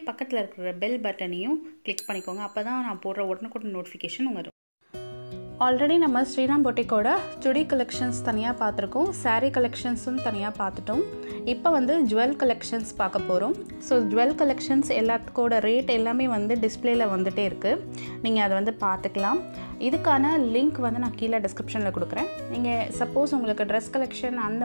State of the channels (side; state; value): both; inverted; correlation -1.00